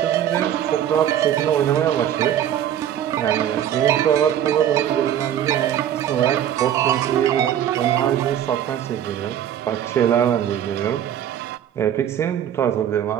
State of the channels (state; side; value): quieter; left; 10.4 dB